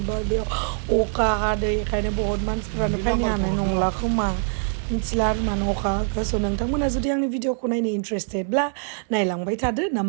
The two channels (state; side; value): silent; left; digital silence